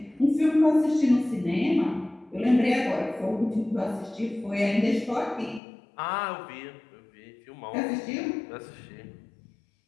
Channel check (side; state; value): right; drops out; at 5.6 s